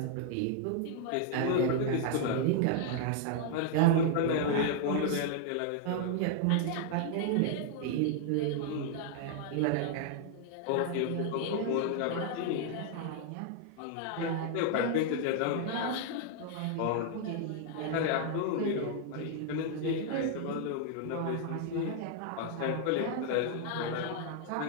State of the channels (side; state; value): both; different; correlation 0.00